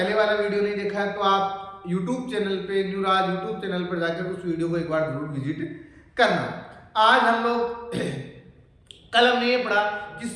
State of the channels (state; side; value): identical; both; correlation 1.00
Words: वाला वीडियो नहीं देखा है तो आप यूट्यूब चैनल पे न्यू राज यूट्यूब चैनल पर जाकर उस वीडियो को एक बार जरूर विजिट करना। आज हम लोग कल हमने ये पढ़ा कि